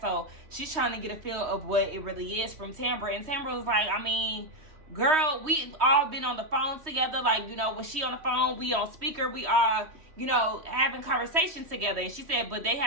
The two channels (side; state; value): left; late; 3.2 ms